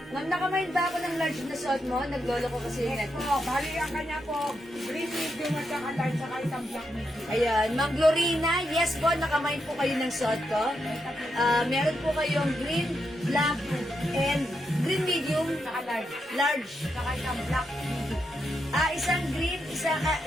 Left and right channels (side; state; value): both; normal; correlation 0.83